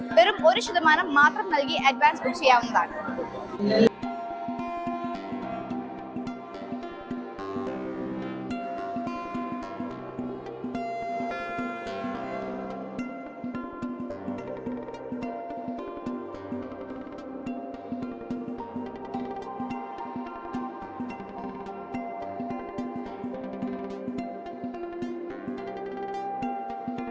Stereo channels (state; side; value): identical; both; correlation 1.00